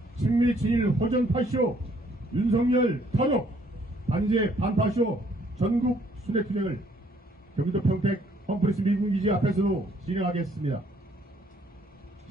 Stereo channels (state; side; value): normal; both; correlation 0.65